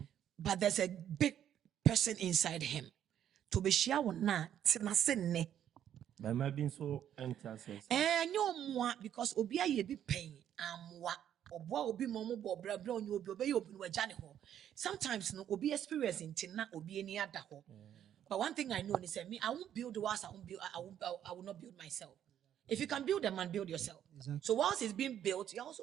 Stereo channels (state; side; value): quieter; left; 10.2 dB